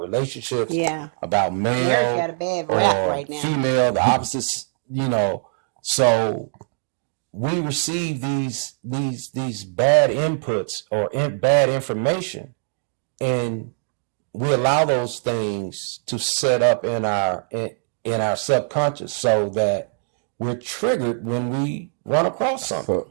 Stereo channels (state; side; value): silent; left; digital silence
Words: about male or female, the opposites, so we receive these bad inputs or bad information, and we allow those things to set up in our subconscious so that we're triggered when we run across something.